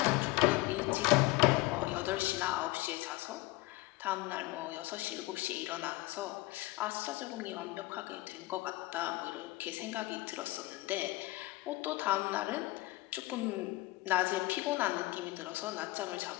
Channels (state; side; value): quieter; right; 20.2 dB